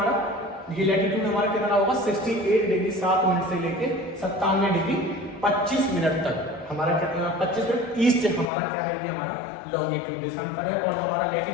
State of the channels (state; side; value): drops out; right; at 8.5 s